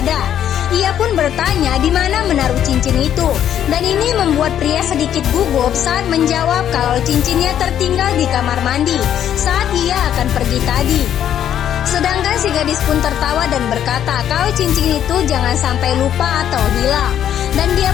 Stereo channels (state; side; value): quieter; right; 10.1 dB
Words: ada. Ia pun bertanya di mana menaruh cincin itu. Dan ini membuat pria sedikit gugup saat menjawab kalau cincinnya tertinggal di kamar mandi saat ia akan pergi tadi. Sedangkan si gadis pun tertawa dan berkata kalau cincin itu jangan sampai lupa atau hilang. Dan dia